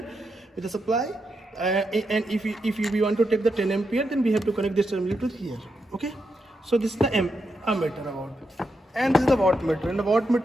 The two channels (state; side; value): normal; both; correlation 0.84